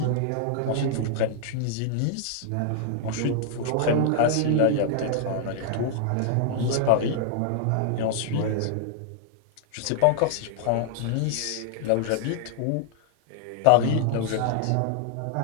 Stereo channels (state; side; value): different; both; correlation -0.01